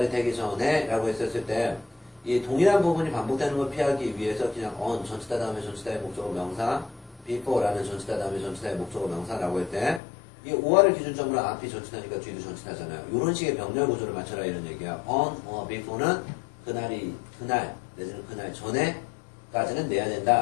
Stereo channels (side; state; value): right; drops out; at 10.0 s